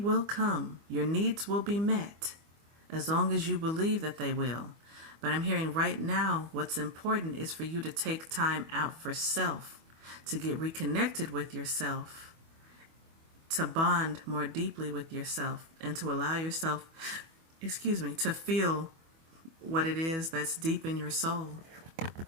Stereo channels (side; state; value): left; late; 25 ms